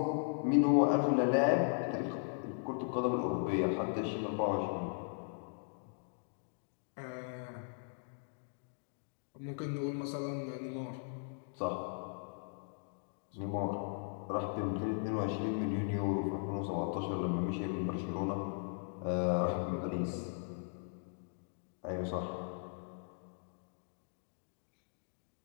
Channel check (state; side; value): silent; right; digital silence